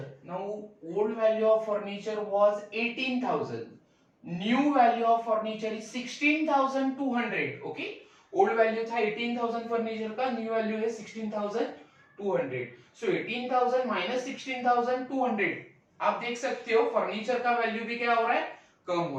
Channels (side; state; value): both; identical; correlation 1.00